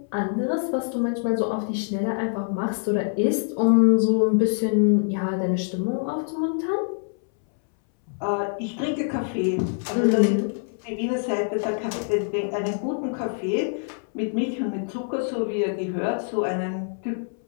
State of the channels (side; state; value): right; silent; 62 dB below the other